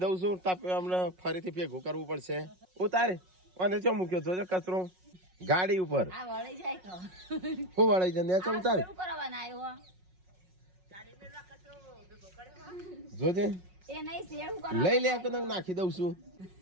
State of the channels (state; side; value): late; left; 5.5 ms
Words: દઉં છું. હમણાં ફરીથી ભેગું કરવું પડશે. ઉતારે અને ચો મૂક્યો છો કચરો ગાડી ઉપર. હું વળાઈ જાય ઉતારે જોજે લઈ લે તો નાખી દઉં છું.